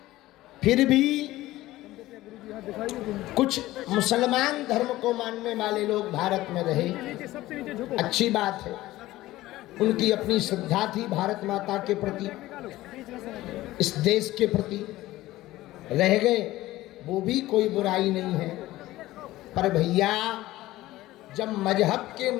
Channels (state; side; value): quieter; right; 16.7 dB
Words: फिर भी कुछ मुसलमान धर्म को मानने वाले लोग भारत में रहे, अच्छी बात है। उनकी अपनी श्रद्धा थी भारत माता के प्रति, इस देश के प्रति, रह गए, वो भी कोई बुराई नहीं है। पर भैया, जब मजहब के